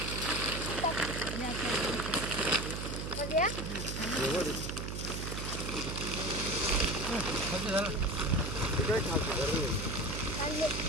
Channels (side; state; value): right; noise; hum, 5 dB below the sound